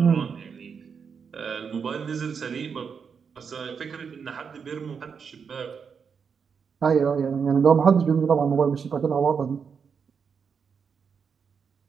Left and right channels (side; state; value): left; quieter; 6.3 dB